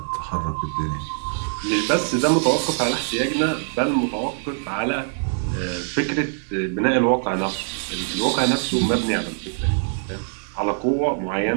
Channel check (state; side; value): silent; left; 62 dB below the other